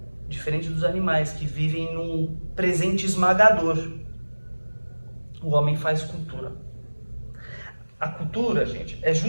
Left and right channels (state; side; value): inverted; both; correlation -1.00